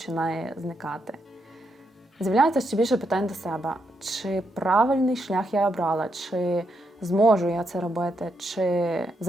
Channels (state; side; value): normal; both; correlation 0.80